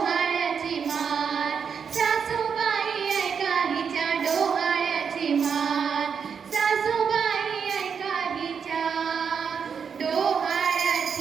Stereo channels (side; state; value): left; quieter; 6.7 dB